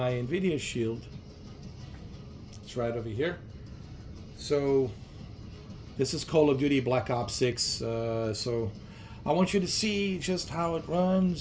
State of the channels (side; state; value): both; identical; correlation 1.00